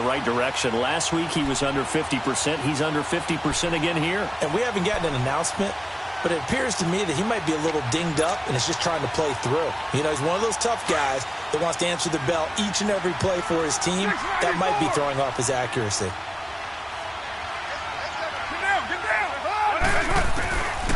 right direction. Last week he was under 50%. He's under 50% again here. And we haven't gotten an announcement, but it appears to me that he might be a little dinged up and is just trying to play through. You know, he's one of those tough guys that wants to answer the bell each and every play for his team. That might be throwing off his accuracy. Get down.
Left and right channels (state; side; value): identical; both; correlation 1.00